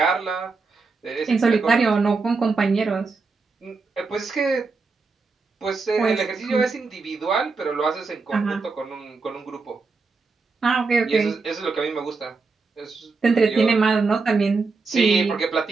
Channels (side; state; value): left; quieter; 4.3 dB